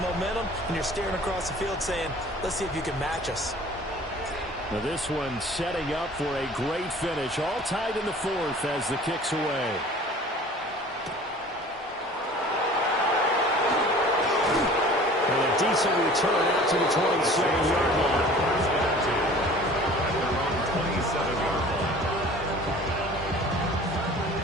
and you're staring across the field saying, let's see if you can match us. Now this one setting up for a great finish. All tied in the 4th as the kick's away. Decent return out to the 27-yard line.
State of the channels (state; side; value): normal; both; correlation 0.46